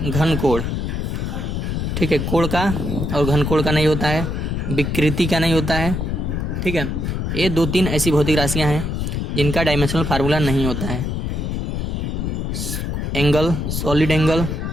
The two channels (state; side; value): noise; left; rumble, 2 dB below the sound